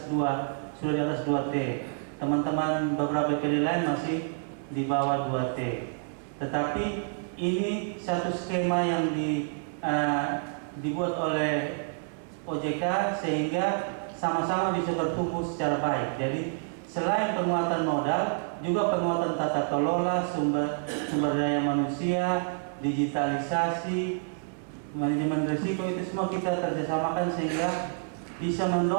2, sudah di atas 2T. Teman-teman beberapa BPD lain masih di bawah 2T. Tetapi ini satu skema yang dibuat oleh OJK sehingga sama-sama bisa bertumbuh secara baik. Jadi selain penguatan modal, juga penguatan tata kelola, sumber daya manusia, digitalisasi, manajemen risiko, itu semua kita kerjasamakan sehingga bisa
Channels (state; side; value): silent; left; 59 dB below the other